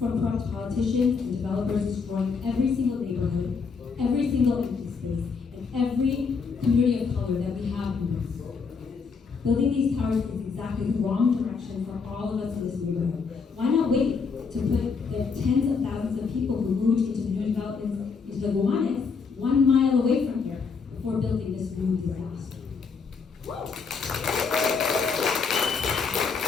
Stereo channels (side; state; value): right; quieter; 5.3 dB